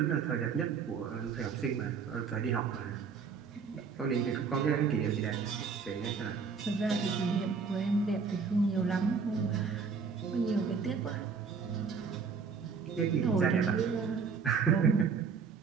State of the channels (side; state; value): left; quieter; 5.6 dB